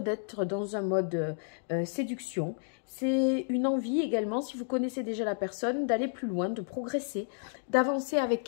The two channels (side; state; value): right; silent; digital silence